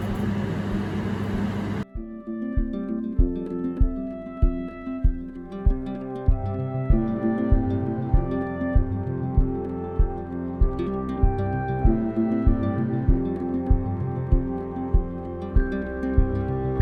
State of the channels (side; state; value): both; identical; correlation 1.00